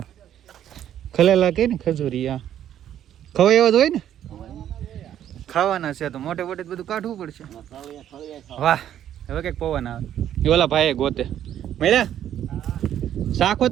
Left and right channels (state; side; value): quieter; left; 10.7 dB